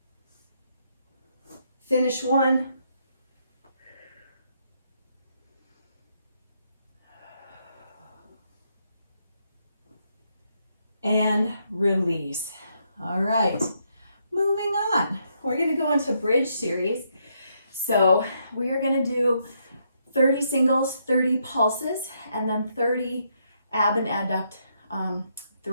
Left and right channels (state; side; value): inverted; both; correlation -0.76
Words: finish one, and release. All right, moving on. We're gonna go into bridge series. So we are gonna do 30 singles, 30 pulses, and then 30 ab and adduct